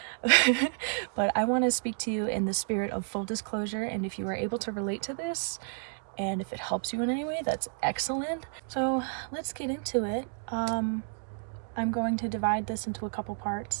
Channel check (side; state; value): left; silent; 57 dB below the other